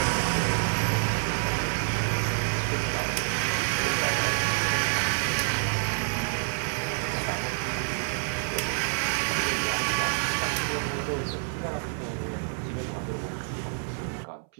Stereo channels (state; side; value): silent; left; 59 dB below the other